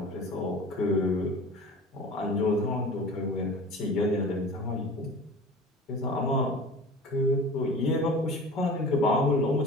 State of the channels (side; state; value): both; normal; correlation 0.39